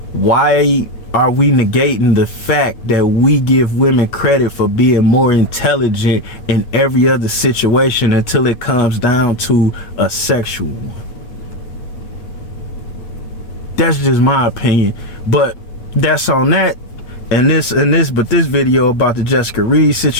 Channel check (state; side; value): late; right; 8.4 ms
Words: why are we negating the fact that we give women credit for being more intelligent in every other situation until it comes down to a sexual one? That's just my opinion. But that's on that. And this video about the Jessica Reed